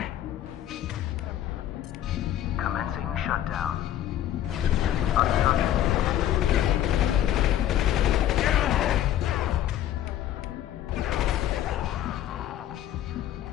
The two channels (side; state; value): right; quieter; 12.0 dB